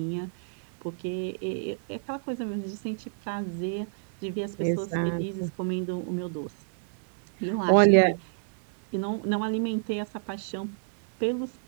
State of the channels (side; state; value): left; silent; digital silence